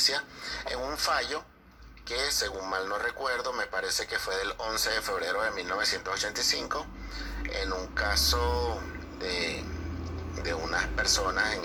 en un fallo que, según mal no recuerdo, me parece que fue del 11 de febrero de 1985, en un caso de unas personas, en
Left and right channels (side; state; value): both; identical; correlation 1.00